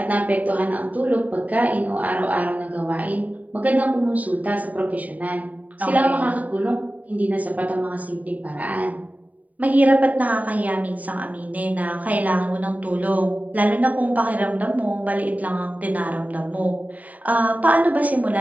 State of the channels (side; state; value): left; late; 0.072 ms